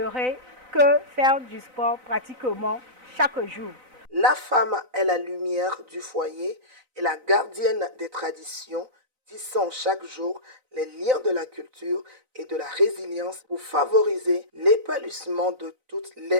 que faire du sport pratiquement chaque jour. La femme est la lumière du foyer et la gardienne des traditions, tissant chaque jour les liens de la culture et de la résilience pour favoriser l'épanouissement de toutes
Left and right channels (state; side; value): late; left; 4.0 ms